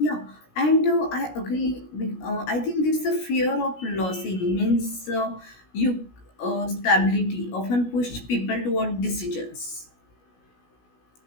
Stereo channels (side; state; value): right; late; 16 ms